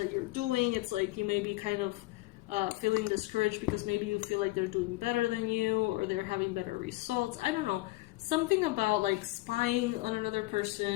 you're doing, it's like you may be kind of feeling discouraged because maybe you feel like they're doing better than you or they're having better results. I don't know. Something about like spying on another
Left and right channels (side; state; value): right; quieter; 19.6 dB